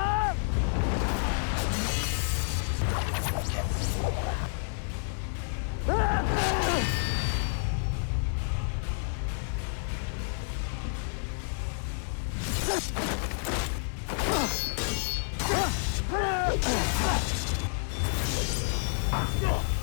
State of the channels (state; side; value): silent; right; digital silence